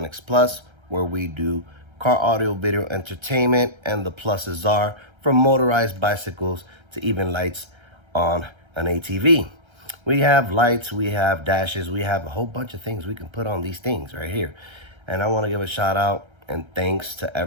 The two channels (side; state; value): left; late; 1.3 ms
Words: Plus, where we do car audio video entertainment, and the pluses are from motorized bicycles to even lights on an ATV. We have lights, we have dashes, we have a whole bunch of things we can put on these things right here. And I want to give a shout out and thanks to